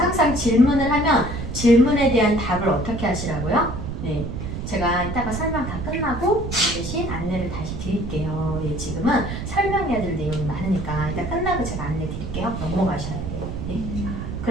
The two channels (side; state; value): right; noise; rumble, 5 dB below the sound